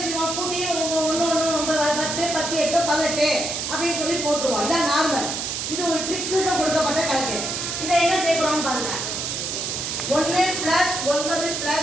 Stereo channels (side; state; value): right; noise; hiss, 3 dB below the sound